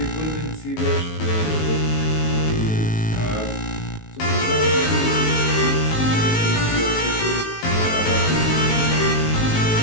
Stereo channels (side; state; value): right; late; 19 ms